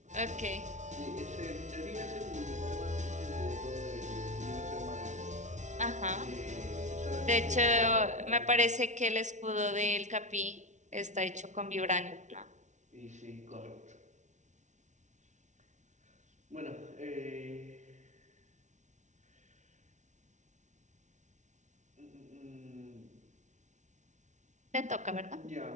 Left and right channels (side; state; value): left; late; 0.35 ms